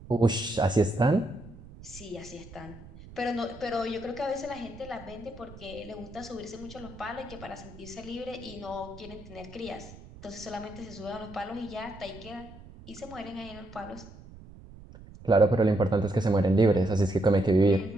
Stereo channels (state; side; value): noise; right; rumble, 18 dB below the sound